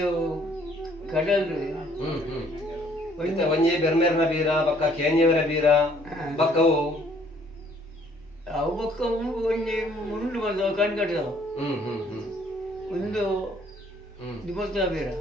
ಕಡಲ್ ಒಂಜಿ ಬೆರ್ಮೇರ್ನ ಬೀರ ಬಕ್ಕ ಕೇಂಜೆವರ ಬೀರ ಬಕ್ಕವು ಅವು ಬಕ್ಕ ಒಂಜಿ ಮುಂಡು ಬಂದವು ಕಣ್ಕಟ್ಟದವು ಒಂದು ದಿವಸ ಬೀರ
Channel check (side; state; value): both; normal; correlation 0.62